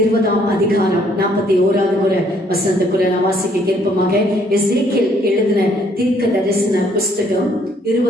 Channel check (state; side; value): normal; both; correlation 0.65